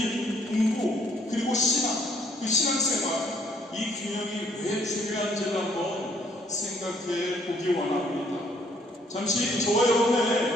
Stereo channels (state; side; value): normal; both; correlation 0.65